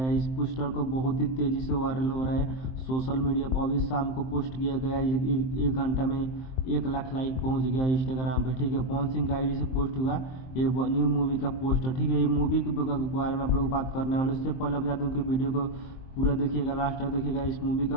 है। इस पोस्टर को बहुत ही तेज़ी से वायरल हो रहा है सोशल मीडिया पर। अभी शाम को पोस्ट किया गया है, एक घंटा में 1 लाख लाइक पहुंच गया इंस्टाग्राम पे। ठीक है, पवन सिंह का आईडी से पोस्ट हुआ ये न्यू मूवी का पोस्टर। ठीक है, ये मूवी के बारे में आप लोग बात करने वाले। उससे पहले बता दूँ कि वीडियो को पूरा देखिएगा, लास्ट तक देखिएगा। इस मूवी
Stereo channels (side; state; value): right; late; 23 ms